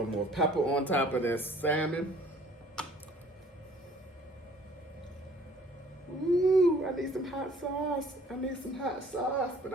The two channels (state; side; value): normal; both; correlation 0.55